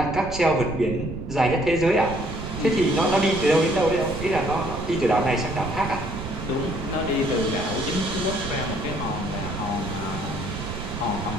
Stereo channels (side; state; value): right; noise; rumble, 8 dB below the sound